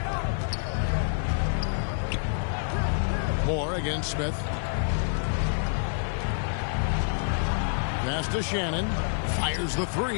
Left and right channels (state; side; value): silent; right; digital silence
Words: Moore against Smith. Pass to Shannon. Fires the